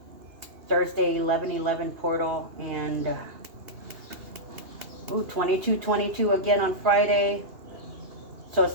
Thursday, 11-11 portal, and 22-22 again on Friday. So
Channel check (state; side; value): late; left; 2.8 ms